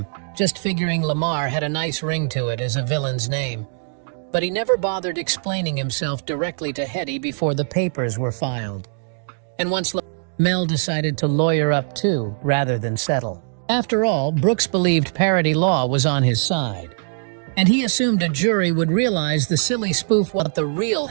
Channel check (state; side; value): silent; left; digital silence